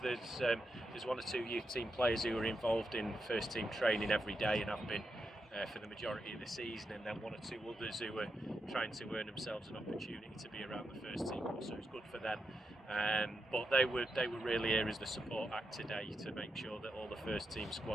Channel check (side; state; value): both; normal; correlation 0.85